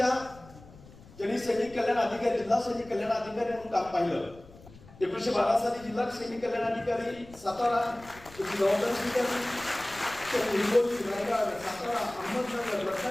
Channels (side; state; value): left; noise; rumble, 21 dB below the sound